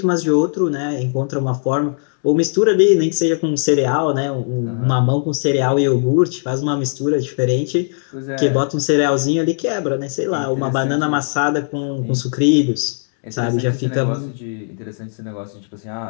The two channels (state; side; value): silent; right; digital silence